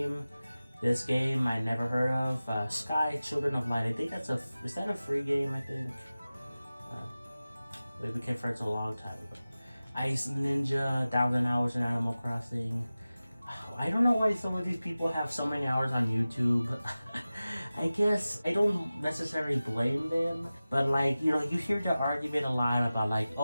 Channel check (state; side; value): inverted; both; correlation -0.96